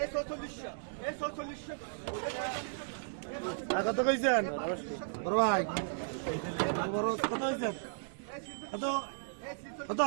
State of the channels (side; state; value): left; silent; digital silence